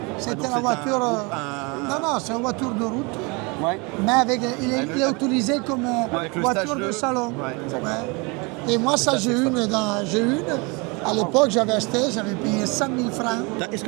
C'était donc la c'est voiture. un- Non, non, c'est une voiture de route. Ouais. Mais avec, il est utilisé comme Avec le voiture stage de de- salon. Ouais, exactement. Ouais. Et moi, ça, j'ai une. À l'époque, j'avais acheté, j'avais payé 100 000 francs. Est-ce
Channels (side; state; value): left; quieter; 29.1 dB